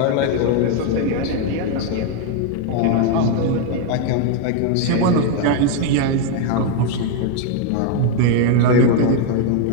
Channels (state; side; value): different; both; correlation 0.00